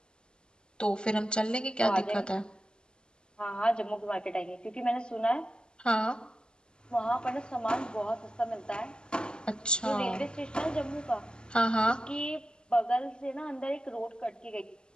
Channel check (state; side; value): late; right; 0.048 ms